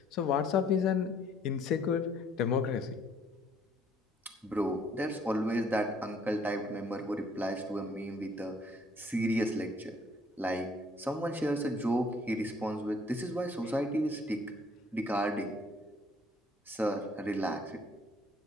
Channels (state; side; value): normal; both; correlation 0.62